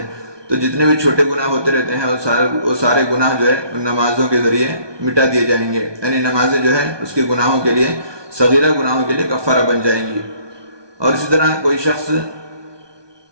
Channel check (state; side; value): late; left; 1.2 ms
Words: تو جتنے بھی چھوٹے گناہ ہوتے رہتے ہیں وہ سارے گناہ جو ہے ان نمازوں کے ذریعے مٹا دیے جائیں گے، یعنی نمازیں جو ہے اس کے گناہوں کے لیے، صغیرہ گناہوں کے لیے کفارہ بن جائیں گی۔ اور اسی طرح کوئی شخص